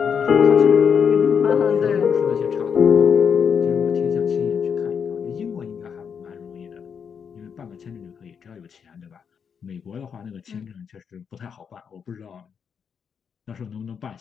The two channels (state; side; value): quieter; right; 6.9 dB